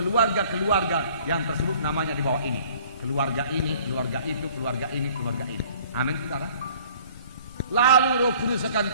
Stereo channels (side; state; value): both; inverted; correlation -0.54